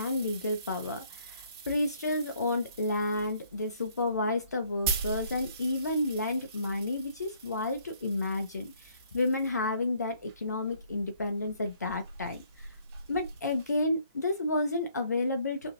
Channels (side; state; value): both; inverted; correlation -0.64